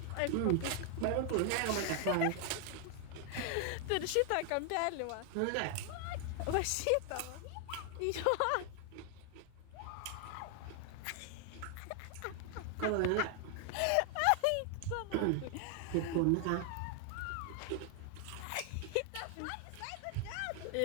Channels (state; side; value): different; both; correlation 0.00